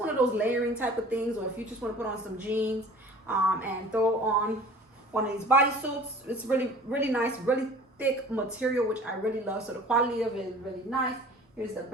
of those layering type of things, or if you just want to put on some jeans and throw on one of these bodysuits. It's really nice, really thick material, which I really love. So the quality of it is really nice. Here's the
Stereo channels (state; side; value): normal; both; correlation 0.45